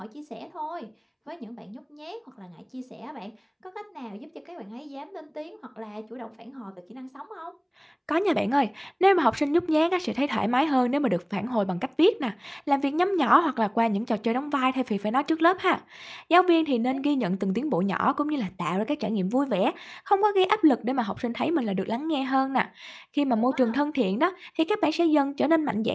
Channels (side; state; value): both; identical; correlation 1.00